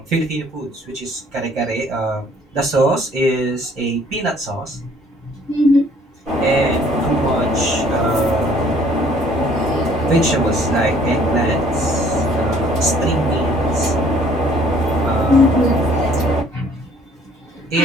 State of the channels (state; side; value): normal; both; correlation 0.58